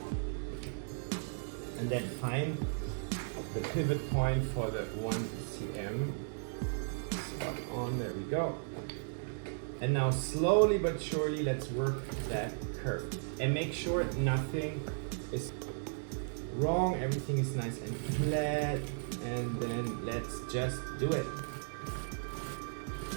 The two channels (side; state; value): left; silent; digital silence